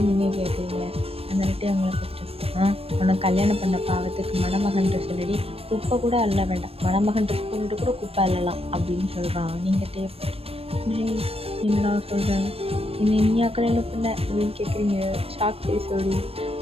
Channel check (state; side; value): late; left; 0.28 ms